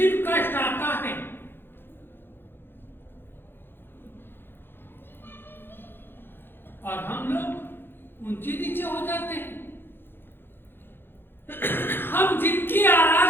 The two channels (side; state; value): right; late; 0.10 ms